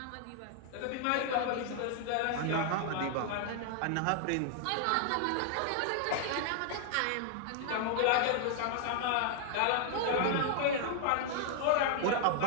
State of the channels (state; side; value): different; both; correlation 0.00